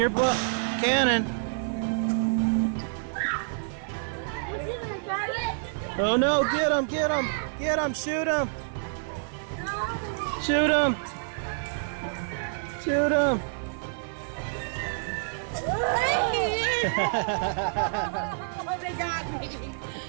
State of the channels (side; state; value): left; silent; 59 dB below the other